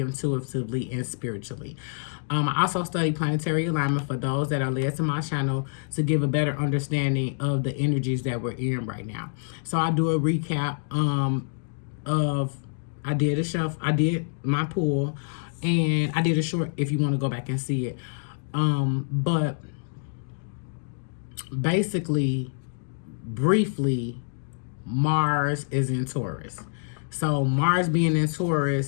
intuitively, and spiritually. I also study planetary alignment for those that are led to my channel to give a better understanding of the energies that we're in right now. So I do a recap of I did my pool, and I did a short if you want to go back and see it. But basically, briefly, Mars is in Taurus. So Mars being in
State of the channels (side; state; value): right; silent; digital silence